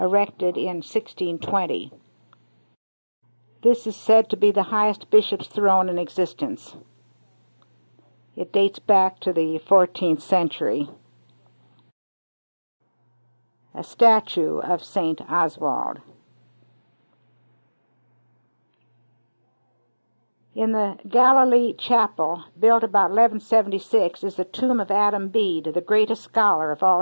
in 1620. This is said to be the highest bishop's throne in existence. It dates back to the 14th century. A statue of St. Oswald. In the Galilee Chapel, built about 1176, is the tomb of Adam Bede, the greatest scholar of all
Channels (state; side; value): inverted; both; correlation -1.00